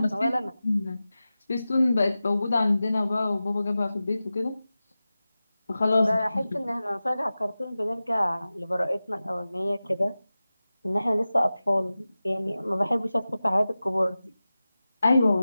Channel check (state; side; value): inverted; both; correlation -0.95